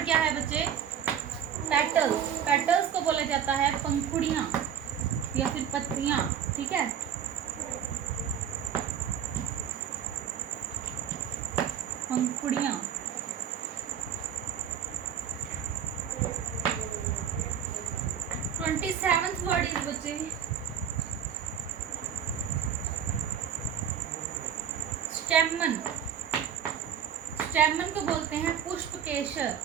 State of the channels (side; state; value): left; quieter; 8.6 dB